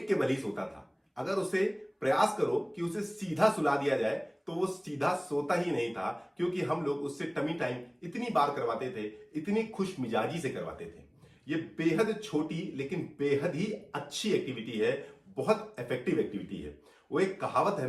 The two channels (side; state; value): both; identical; correlation 1.00